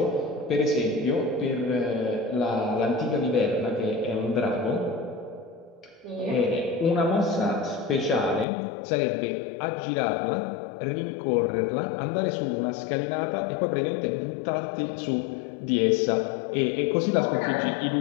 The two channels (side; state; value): right; drops out; at 8.5 s